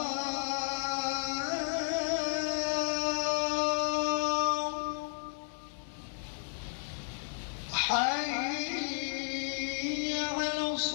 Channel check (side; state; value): right; silent; 56 dB below the other